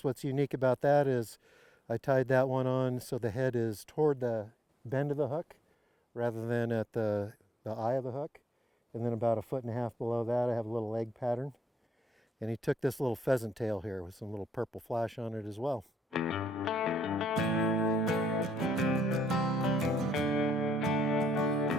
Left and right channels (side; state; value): both; normal; correlation 0.77